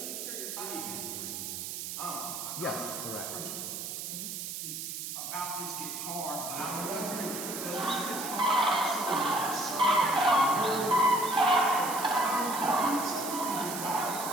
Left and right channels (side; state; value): right; noise; hiss, 6 dB below the sound